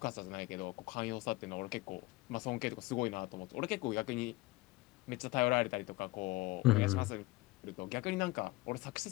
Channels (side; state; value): right; quieter; 20.7 dB